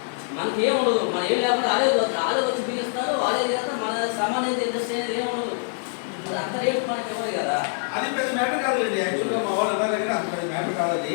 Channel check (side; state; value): right; silent; 62 dB below the other